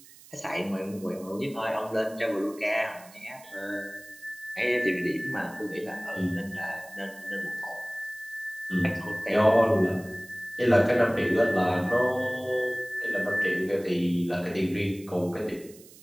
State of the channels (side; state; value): right; noise; hiss, 21 dB below the sound